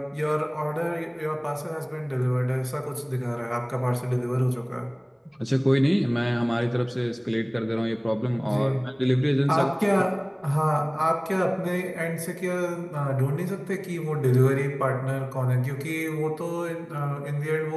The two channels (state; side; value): identical; both; correlation 1.00